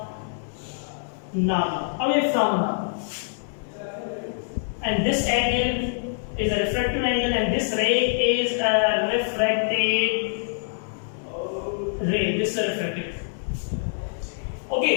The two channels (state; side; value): silent; right; digital silence